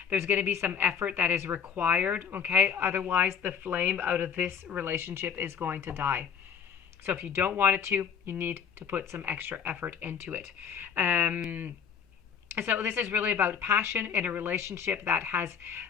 There's going to be some effort that is required, okay? Otherwise, the flame out of this relationship is going to die. So if you don't want it to, you need to put some extra effort into it. So this is really about passion in a relationship that has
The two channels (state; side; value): quieter; right; 7.3 dB